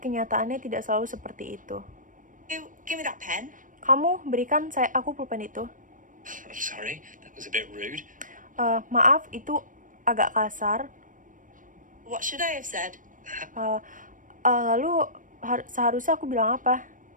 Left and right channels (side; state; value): left; late; 0.38 ms